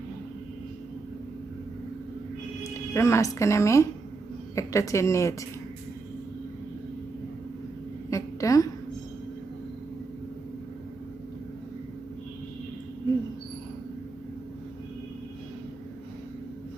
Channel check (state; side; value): quieter; left; 4.0 dB